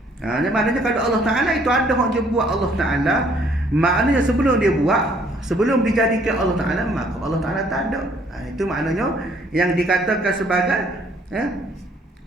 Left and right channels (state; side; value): normal; both; correlation 0.63